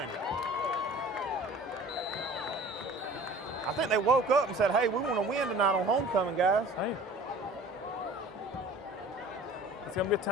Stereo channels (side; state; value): both; normal; correlation 0.45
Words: I think they woke up and said, hey, we want to win tonight on homecoming, guys. Hey. It's going to be a